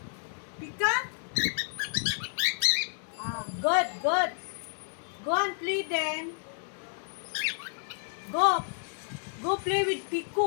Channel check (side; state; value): right; silent; digital silence